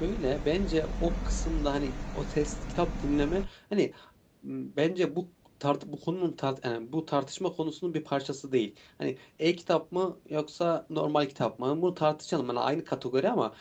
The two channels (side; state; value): both; identical; correlation 1.00